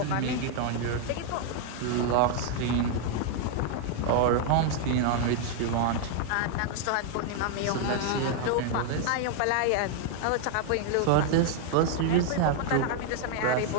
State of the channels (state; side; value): different; both; correlation 0.00